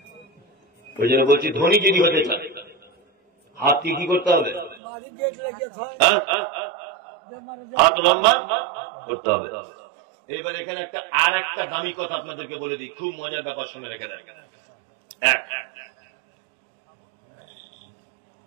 ওই জন্য বলছি ধনী যদি হতে চায় হাত কি করতে হবে? হাত লম্বা করতে হবে। এইবার এখানে আর একটা দামি কথা আপনাদেরকে বলে দিই, খুব মজার ব্যাপার, শুনে রেখে দেন।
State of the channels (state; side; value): drops out; left; at 4.8 s